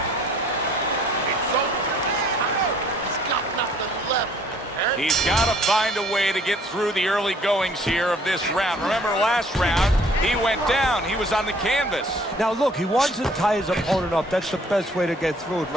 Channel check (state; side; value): normal; both; correlation 0.58